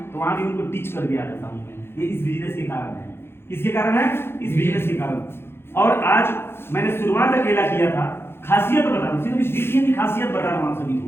तो वहां भी उनको टीच करके आ जाता हूँ मैं। ये इस बिजनेस के कारण है। किसके कारण है? इस बिजनेस के कारण। और आज मैंने शुरुआत अकेला किया था। खासियत बता रहा हूँ, सिर्फ इस वीडियो की खासियत बता रहा हूँ आप सभी को।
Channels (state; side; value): late; right; 0.11 ms